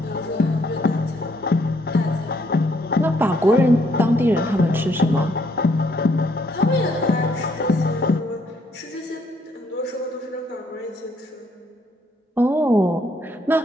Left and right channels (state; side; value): normal; both; correlation 0.69